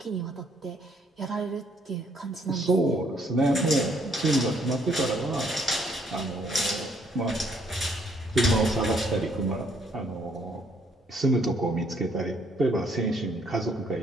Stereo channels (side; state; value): both; normal; correlation 0.67